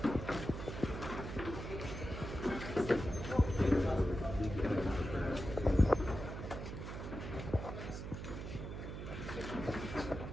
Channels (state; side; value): noise; right; hum, 7 dB below the sound